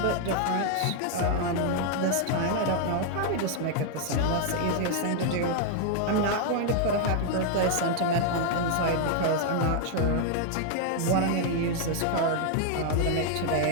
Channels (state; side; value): different; both; correlation 0.00